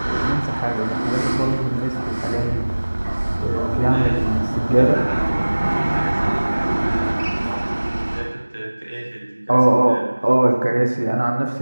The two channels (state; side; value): inverted; both; correlation -1.00